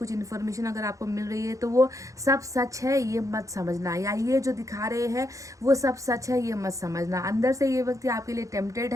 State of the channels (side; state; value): left; late; 0.16 ms